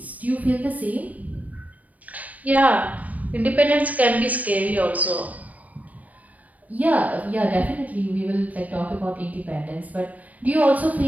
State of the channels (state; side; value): late; left; 0.072 ms